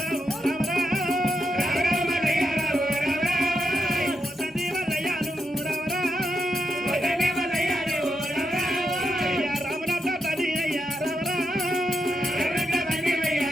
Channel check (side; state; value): both; normal; correlation 0.84